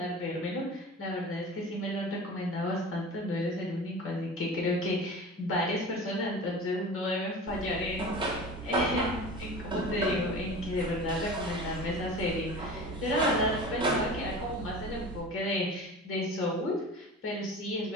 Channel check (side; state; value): both; normal; correlation 0.35